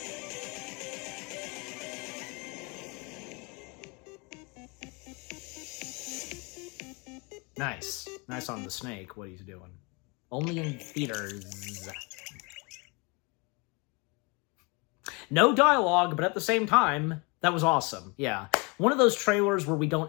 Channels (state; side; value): quieter; right; 29.6 dB